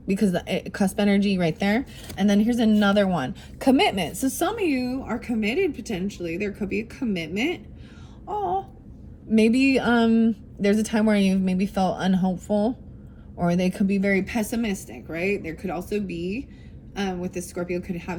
Because the cusp energy right there. And then here's another one. Commitment. So some of you are committed potentially. There could be a commitment. Oh, maybe there's a time where you've maybe felt unhopeful, or they could be very pessimistic, right? There could also be, with the Scorpio, could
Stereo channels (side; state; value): both; identical; correlation 1.00